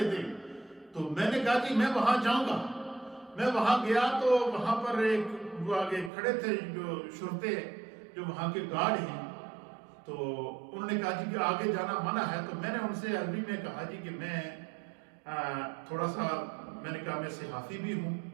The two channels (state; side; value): drops out; left; at 6.1 s